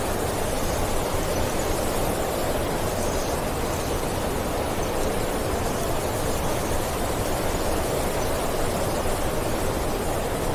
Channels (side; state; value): both; identical; correlation 1.00